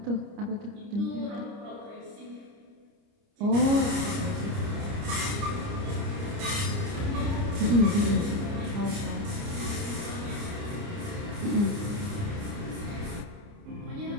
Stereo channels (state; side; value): late; left; 29 ms